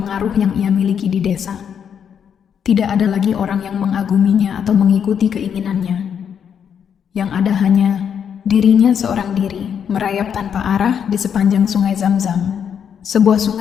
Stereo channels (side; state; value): right; quieter; 7.9 dB